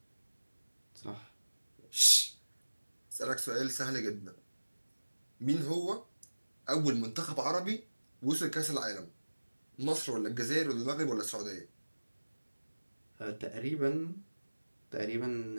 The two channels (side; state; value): both; inverted; correlation -1.00